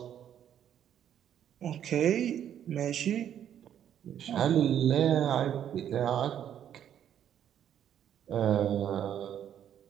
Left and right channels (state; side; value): quieter; left; 9.9 dB